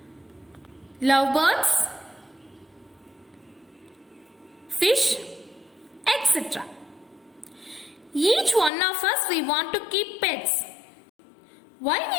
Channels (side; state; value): right; drops out; at 8.7 s